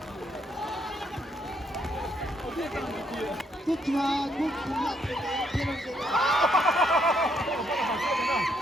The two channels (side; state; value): both; normal; correlation 0.73